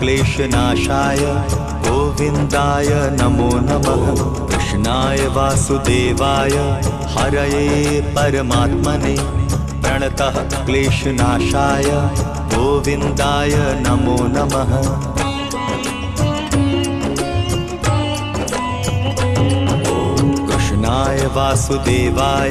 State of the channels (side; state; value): both; identical; correlation 1.00